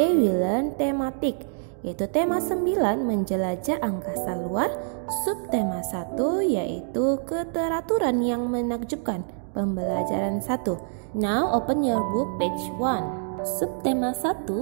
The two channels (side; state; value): left; silent; digital silence